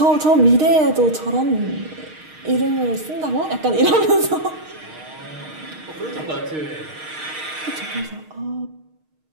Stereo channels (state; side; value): late; left; 6.5 ms